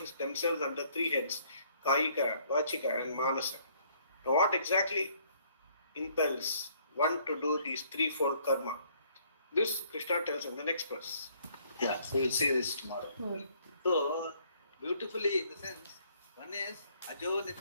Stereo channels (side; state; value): both; inverted; correlation -0.63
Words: themselves under three heads, kayika, vachika, and manasa. Now, what exactly impels one to do these threefold karma? This Krishna tells in the next verse. Yeah, so we'll see this tomorrow. So, beautifully, in the sense, one is Ajo